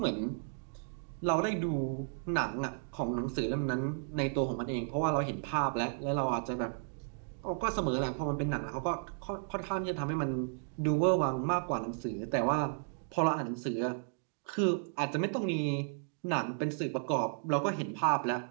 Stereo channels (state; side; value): silent; left; digital silence